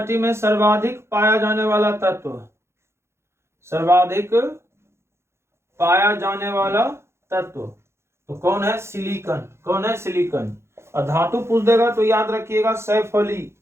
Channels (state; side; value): late; left; 0.13 ms